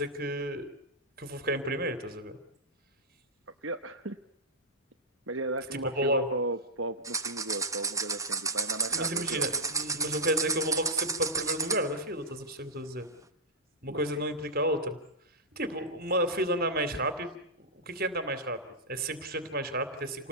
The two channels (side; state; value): both; normal; correlation -0.10